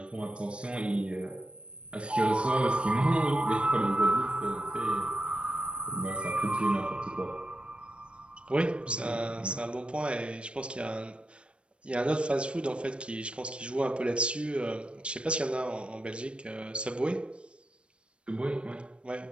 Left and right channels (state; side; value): late; left; 0.058 ms